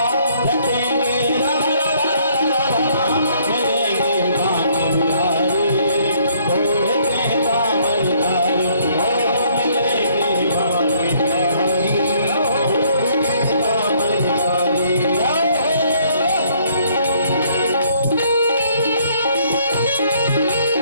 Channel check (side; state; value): both; inverted; correlation -0.65